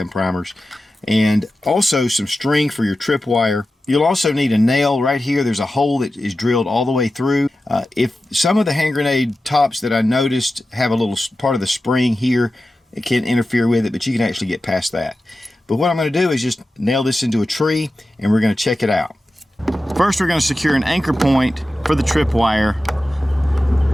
primers. And also some string for your tripwire. You'll also need a nail right here. There's a hole that is drilled all the way through. If some of the hand grenade tops that I noticed have a little part of the spring here, it can interfere with it, but you can actually get past that. But what I'm going to do is just nail this into a tree, and we're going to check it out. First, we're going to secure an anchor point for the tripwire.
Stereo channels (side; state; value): both; normal; correlation 0.93